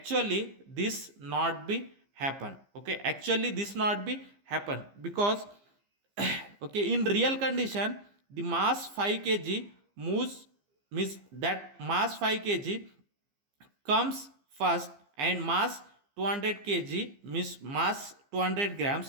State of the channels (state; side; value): late; left; 15 ms